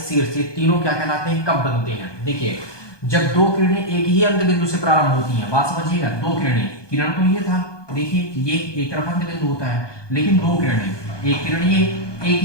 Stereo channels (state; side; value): late; right; 1.2 ms